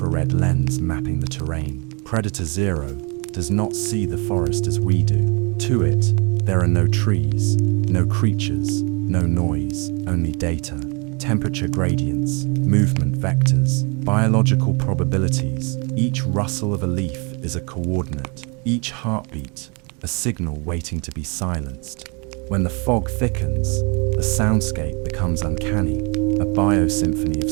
lens mapping the terrain. Predator Zero does not see the forest as we do. To it, there are no trees, no creatures, no noise, only data, temperature gradients, movement vectors, biological probabilities. Each rustle of a leaf is a coordinate, each heartbeat a signal waiting to be silenced. When the fog thickens, the soundscape becomes uncanny, a biosymphony of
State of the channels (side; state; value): left; quieter; 32.3 dB